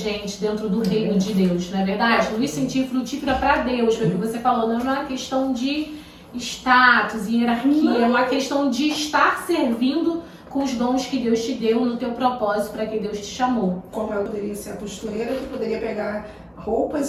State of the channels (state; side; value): identical; both; correlation 1.00